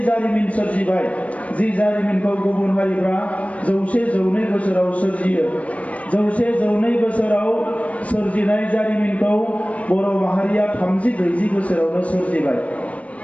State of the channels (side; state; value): right; late; 0.067 ms